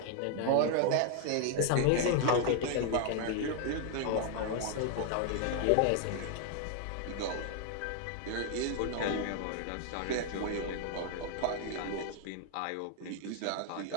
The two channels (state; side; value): different; both; correlation 0.00